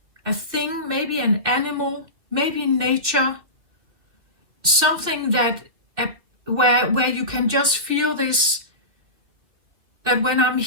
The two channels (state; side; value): late; left; 2.7 ms